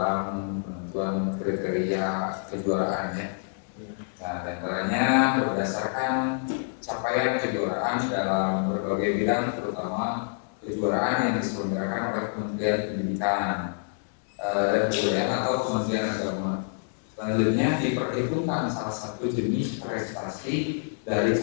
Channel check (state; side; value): silent; right; digital silence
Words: penentuan kriteria kejuaraan ya. Nah, antaranya berdasarkan capaian kejuaraan dalam berbagai bidang, terutama kejuaraan yang diselenggarakan oleh Kementerian Pendidikan dan Kebudayaan atau Kementerian Agama. Selanjutnya diperhitungkan salah satu jenis prestasi dari